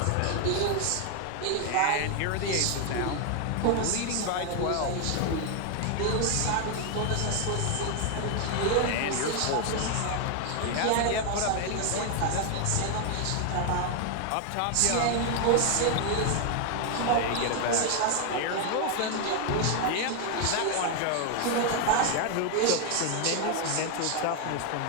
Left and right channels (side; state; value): both; different; correlation 0.00